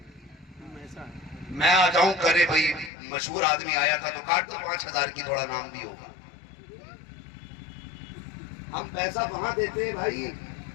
میں آ جاؤں کرے بھائی مشہور آدمی آیا تھا تو کاٹ دو 5000 کی، تھوڑا نام بھی ہوگا۔ ہم پیسہ وہاں دیتے ہیں بھائی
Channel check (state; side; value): drops out; right; at 2.9 s